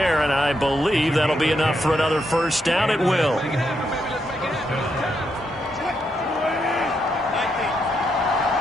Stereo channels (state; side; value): normal; both; correlation 0.80